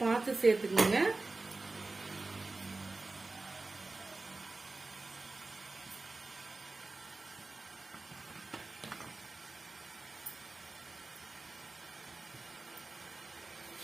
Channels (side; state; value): left; quieter; 3.4 dB